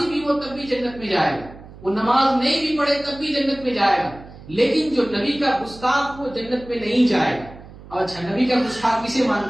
بھی وہ تب بھی جنت میں جائے گا، وہ نماز نہیں بھی پڑھے تب بھی جنت میں جائے گا. لیکن جو نبی کا گستاخ وہ جنت میں نہیں جائے گا. اور اچھا نبی کا گستاخ کسے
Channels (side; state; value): right; noise; hum, 18 dB below the sound